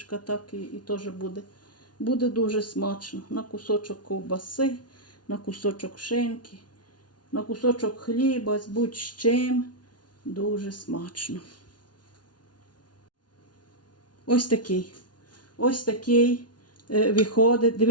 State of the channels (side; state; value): right; late; 0.69 ms